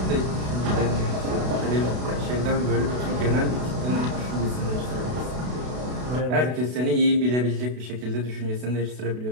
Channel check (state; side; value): late; left; 32 ms